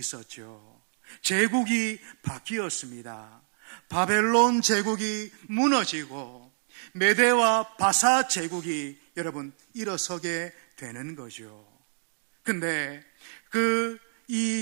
제국이 바뀌었습니다. 바벨론 제국이 무너지고 메대와 바사 제국이 여러분 일어서게 되는 거죠. 근데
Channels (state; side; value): silent; left; digital silence